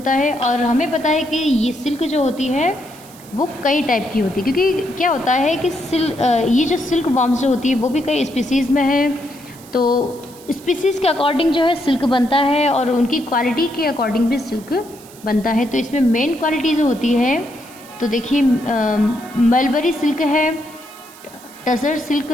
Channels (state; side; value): noise; right; hiss, 21 dB below the sound